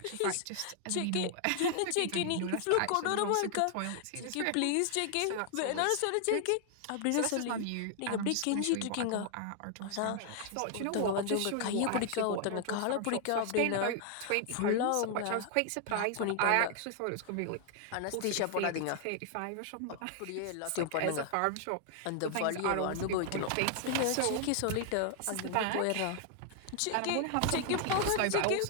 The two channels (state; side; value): different; both; correlation 0.00